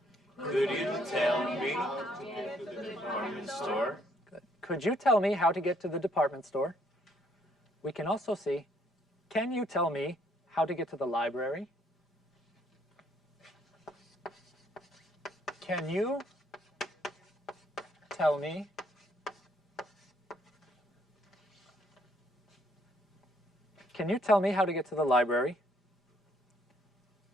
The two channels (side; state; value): both; normal; correlation 0.68